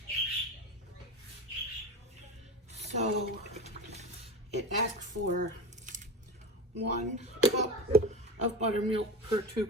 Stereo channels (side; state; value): both; normal; correlation 0.25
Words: So it asked for 1 cup of buttermilk per 2